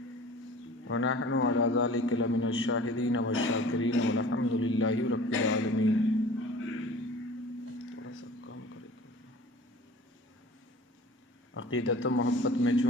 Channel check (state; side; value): normal; both; correlation 0.44